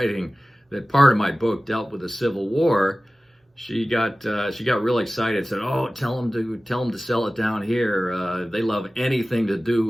that part of my book dealt with the Civil War, she got real excited. Said, "Oh, tell them to sell it down here. They love anything to do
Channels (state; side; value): normal; both; correlation 0.97